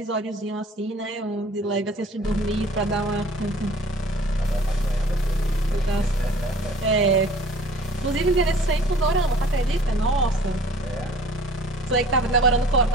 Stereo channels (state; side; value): normal; both; correlation 0.50